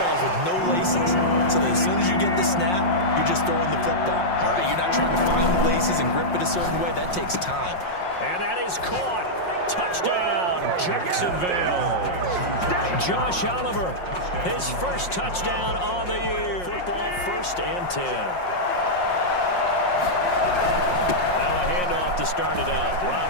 with no laces. So that as soon as you get the snap, you're just throwing the football. All right, you're not trying to find the laces and grip it a certain way. That takes time. And that is caught. Touchdown, Jacksonville. Josh Oliver, his 1st touchdown on the year. Football 1st and 10. Now a handoff to start it out.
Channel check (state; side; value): late; right; 5.6 ms